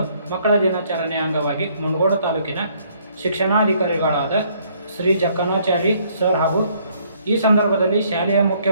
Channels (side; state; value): both; inverted; correlation -0.65